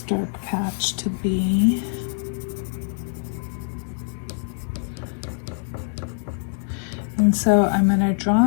dark patch to be. And so I'm going to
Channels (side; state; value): right; silent; digital silence